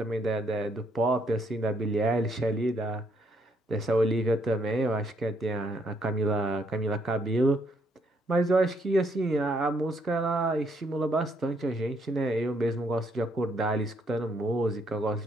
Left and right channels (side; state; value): both; normal; correlation 0.71